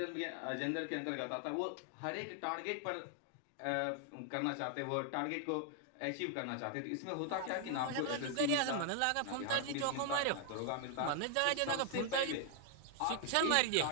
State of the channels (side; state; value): both; different; correlation 0.00